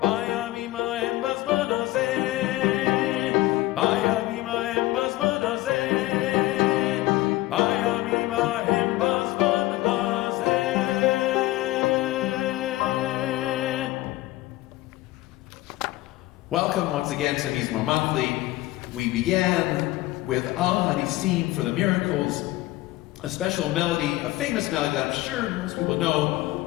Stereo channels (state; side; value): quieter; right; 17.9 dB